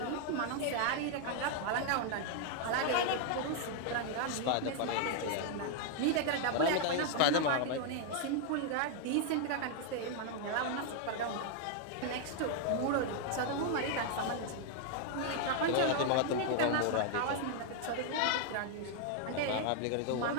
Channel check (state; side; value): different; both; correlation 0.00